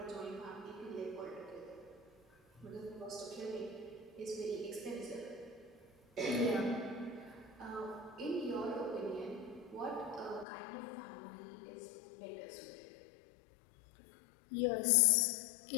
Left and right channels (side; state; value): right; drops out; at 10.5 s